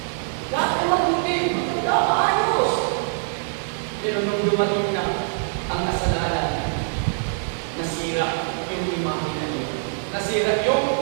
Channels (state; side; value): silent; left; 63 dB below the other